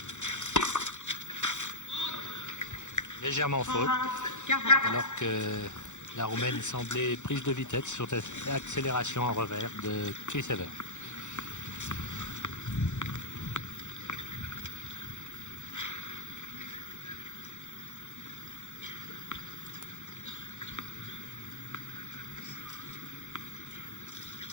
Légèrement faute, alors que la Roumaine semblait prise de vitesse sur cette accélération en revers de Chris Evert.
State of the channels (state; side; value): late; right; 0.84 ms